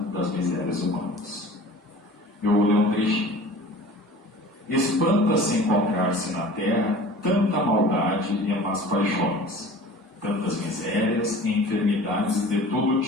das misérias humanas. Eu vou ler um trechinho. Espanta-se encontrar-se na terra tanta maldade e más paixões, tantas misérias e enfermidades de todo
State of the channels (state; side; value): normal; both; correlation 0.42